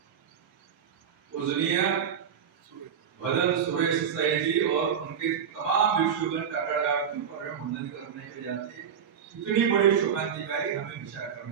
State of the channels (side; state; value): left; quieter; 7.8 dB